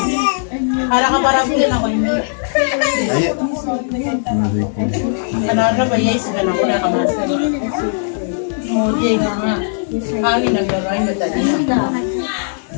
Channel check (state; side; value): silent; right; 63 dB below the other